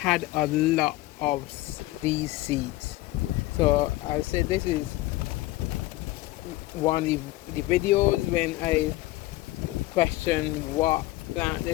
a lot of these seeds. So I said this is one of the videos when I questioned what plant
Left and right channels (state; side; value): quieter; right; 18.1 dB